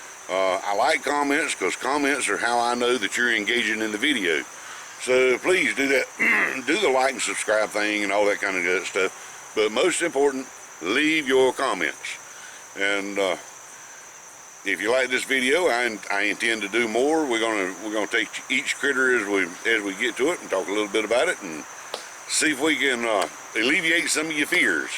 I like comments because comments are how I know that you're engaging in the video. So please do that. Do the like and subscribe thing and all that kind of good stuff. But most important, leave your comments. And if you like this video, I intend to do more. We're gonna take each critter as we get to it and talk a little bit about it and see if we can alleviate some of your fears.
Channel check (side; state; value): both; identical; correlation 1.00